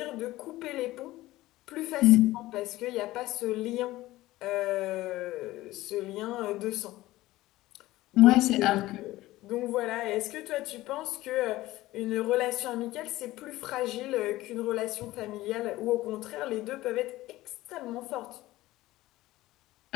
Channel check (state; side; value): quieter; right; 17.2 dB